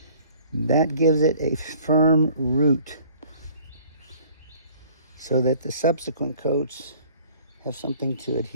That gives it a firm root so that the subsequent coats have something to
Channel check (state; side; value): inverted; both; correlation -0.54